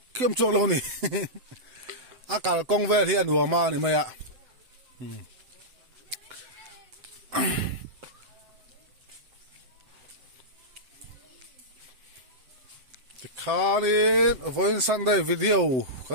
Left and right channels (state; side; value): late; left; 7.9 ms